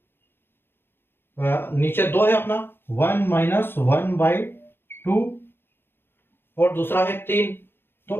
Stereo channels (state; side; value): late; right; 0.11 ms